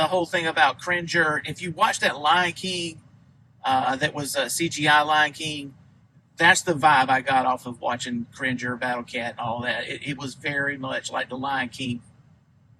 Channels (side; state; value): both; identical; correlation 1.00